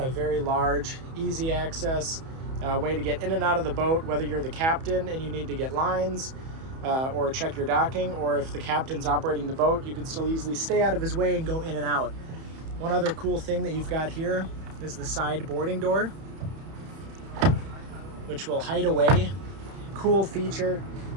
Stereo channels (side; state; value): left; late; 31 ms